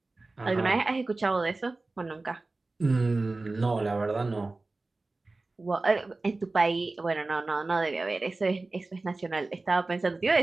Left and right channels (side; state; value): left; quieter; 3.3 dB